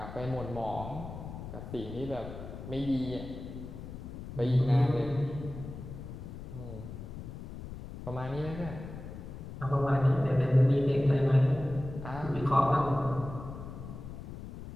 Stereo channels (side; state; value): left; noise; rumble, 11 dB below the sound